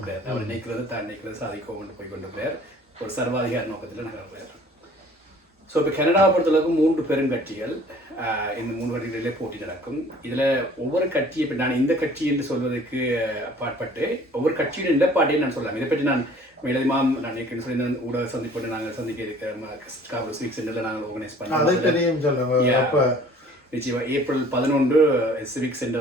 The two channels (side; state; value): both; normal; correlation 0.52